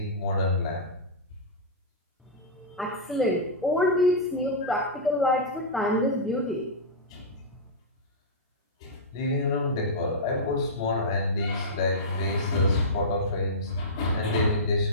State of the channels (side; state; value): both; normal; correlation -0.13